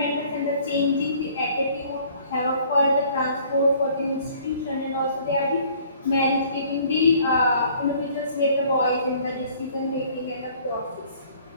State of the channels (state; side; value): inverted; both; correlation -0.56